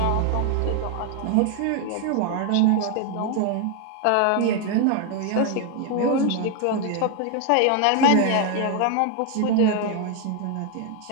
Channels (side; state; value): both; different; correlation 0.01